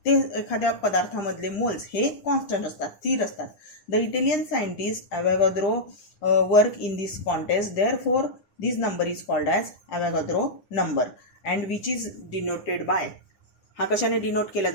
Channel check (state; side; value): late; right; 9.8 ms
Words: ते एखाद्या पदार्थामधले मोल्स हे कॉन्स्टंट असतात, स्थिर असतात. The Italian scientist Avogadro work in this contest, therefore this number is called as Avogadro number and which is denoted by. हा कशाने डिनोट केला